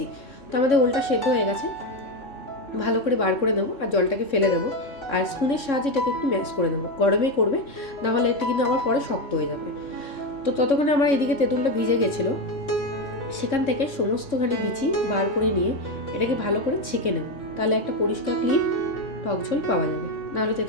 তো আমাদের ওলটা সেদ্ধ হয়ে গেছে, ভালো করে বার করে দেবো আর জলটাকে ফেলে দেবো। আর স্পুনের সাহায্যে এটাকে একটু ম্যাশ করে দেবো, গরমেই করবে, নাহলে এটা কিন্তু আবার পরে শক্ত হয়ে যাবে। তো ততক্ষণে আমার এদিকে তেঁতুলটা ভিজে গেছিলো, সেখান থেকে সমস্তখানি বিচি বার করে নিয়ে এটাকে ভালো করে ছেঁকে নেব, তাহলে একটা পরিষ্কার ক্লিন টক ঝোল পাওয়া যাবে। নাহলে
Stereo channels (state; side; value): late; right; 3.6 ms